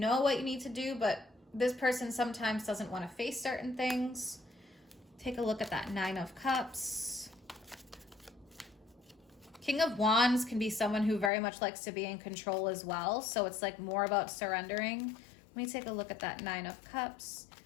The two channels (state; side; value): drops out; right; at 11.3 s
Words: what you need to do, but this person sometimes doesn't want to face certain things. Take a look at that 9 of Cups. King of Wands can be someone who very much likes to be in control as well. So it's like more about surrendering. Let me take a look at that 9 of Cups.